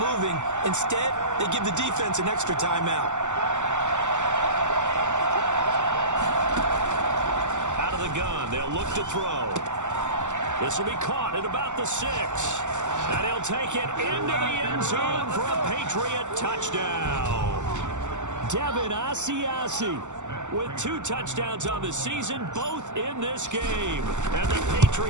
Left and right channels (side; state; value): left; late; 0.84 ms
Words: Instead, they give the defense an extra timeout. Out of the gun, they'll look to throw. This will be caught at about the 6. And he'll take it into the end zone for a Patriot touchdown. Devin Asiasi with 2 touchdowns on the season, both in this game. And the